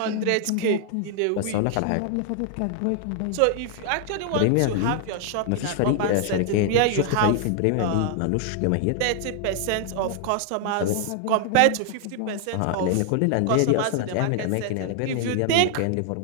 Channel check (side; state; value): both; different; correlation 0.00